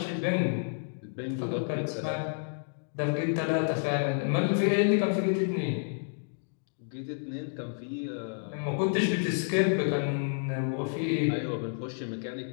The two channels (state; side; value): silent; right; digital silence